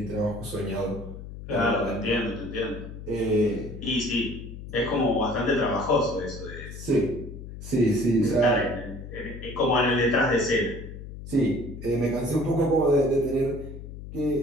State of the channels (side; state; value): left; noise; hum, 11 dB below the sound